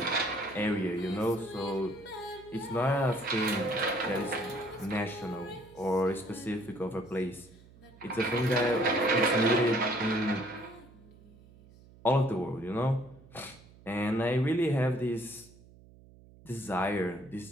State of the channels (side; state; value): right; noise; hum, 23 dB below the sound